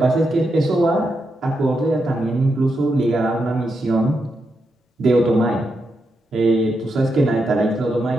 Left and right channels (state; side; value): normal; both; correlation 0.84